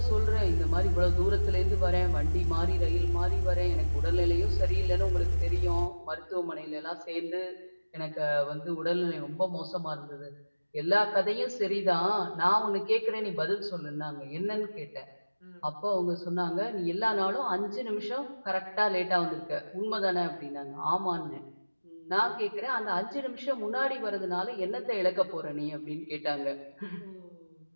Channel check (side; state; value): both; inverted; correlation -1.00